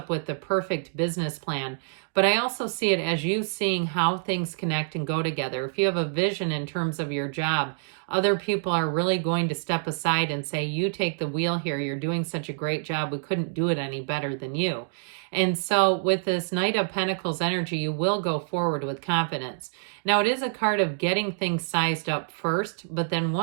with the perfect business plan. But I also see it as you seeing how things connect and go together. If you have a vision in terms of your job, other people are really going to step aside and say, you take the wheel here. You're doing such a great job. We couldn't do it any better than you. And so with this Knight of Pentacles energy, you will go forward with confidence. Now, it is a card of getting things sized up first, but then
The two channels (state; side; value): silent; left; digital silence